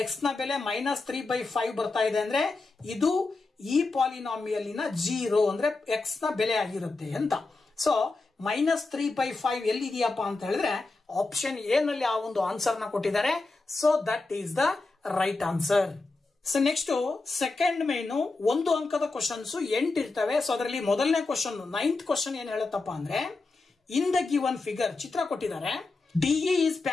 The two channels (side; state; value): right; quieter; 3.6 dB